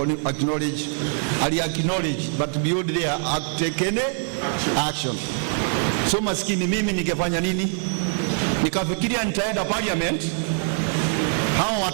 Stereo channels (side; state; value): left; silent; 59 dB below the other